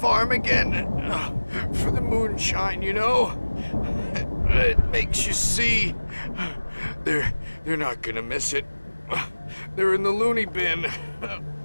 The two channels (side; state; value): both; inverted; correlation -1.00